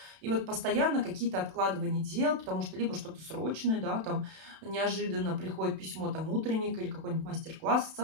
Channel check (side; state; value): left; late; 32 ms